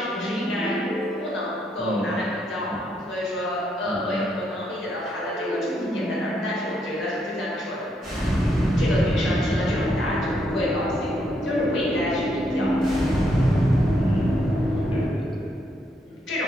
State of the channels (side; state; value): both; normal; correlation 0.76